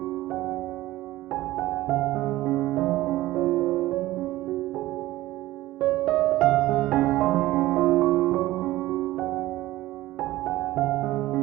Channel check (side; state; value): left; quieter; 16.7 dB